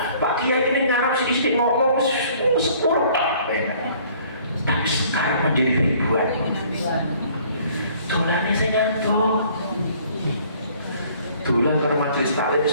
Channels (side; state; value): both; inverted; correlation -0.57